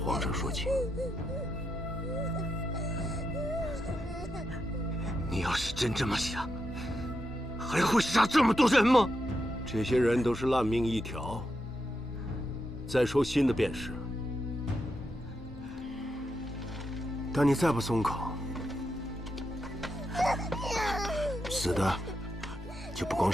上说情。你要是真这么想，还会杀这么多人吗？这些人都是烂命一条。再说新的便是，但你再不松口，死的就不光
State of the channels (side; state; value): both; normal; correlation 0.85